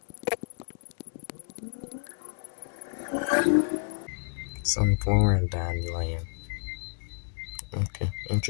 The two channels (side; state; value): right; silent; digital silence